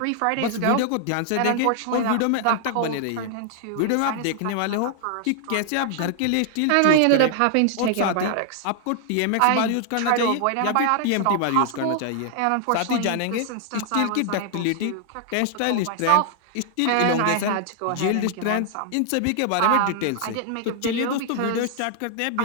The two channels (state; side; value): different; both; correlation 0.00